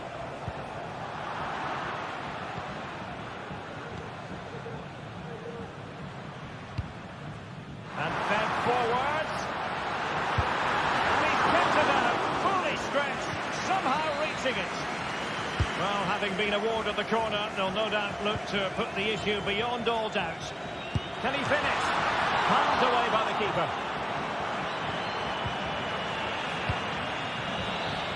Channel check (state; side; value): identical; both; correlation 1.00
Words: And fed forwards. And he's kept it out, fully stretched, somehow reaching it. Well, having been awarded the corner, they'll no doubt look to put the issue beyond all doubt. Can he finish? Palmed away by the keeper.